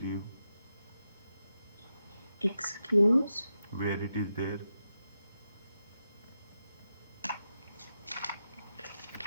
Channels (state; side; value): inverted; both; correlation -0.88